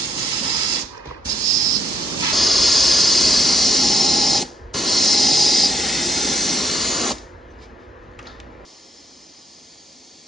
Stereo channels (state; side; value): normal; both; correlation 0.69